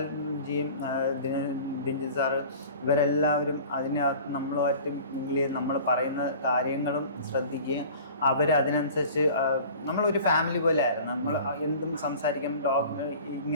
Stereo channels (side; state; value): both; inverted; correlation -0.43